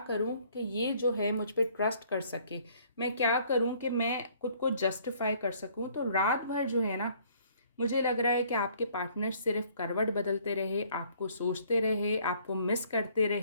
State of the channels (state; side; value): inverted; both; correlation -0.60